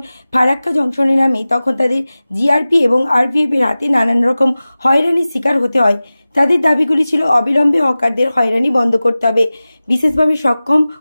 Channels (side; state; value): both; inverted; correlation -0.97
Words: ফারাক্কা জংশনে নামে তখন তাদের জিআরপি এবং আরপিএফ এর হাতে নানান রকম হয়রানির শিকার হতে হয়। তাদের দাবিগুলি ছিল অবিলম্বে হকারদের হয়রানি বন্ধ করতে হবে, বিশেষভাবে সক্ষম